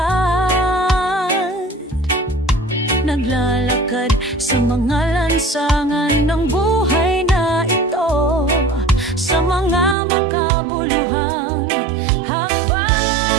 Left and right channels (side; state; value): left; drops out; at 10.0 s